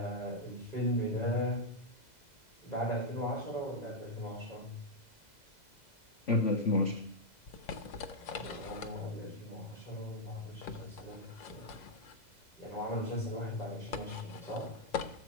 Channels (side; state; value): right; late; 2.0 ms